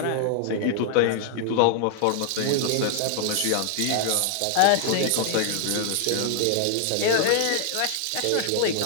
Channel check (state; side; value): different; both; correlation 0.00